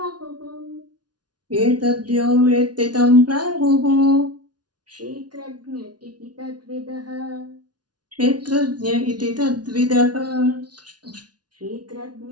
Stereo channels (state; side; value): late; left; 0.69 ms